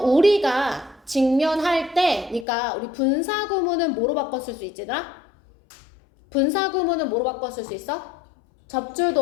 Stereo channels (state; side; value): drops out; right; at 2.5 s